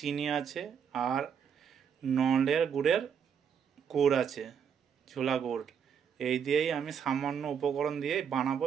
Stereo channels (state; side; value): quieter; left; 7.5 dB